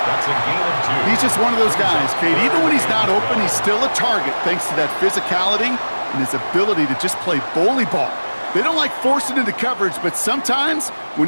That's a gain of 2. He's just one of those guys, Kate. Even when he's not open, he's still a target thanks to that physicality and his ability to just play bully ball. They don't like forcing into coverage, but sometimes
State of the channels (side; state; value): both; inverted; correlation -1.00